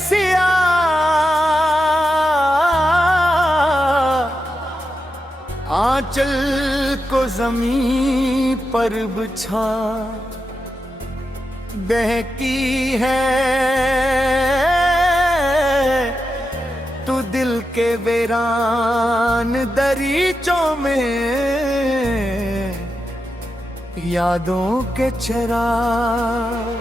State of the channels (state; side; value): normal; both; correlation 0.88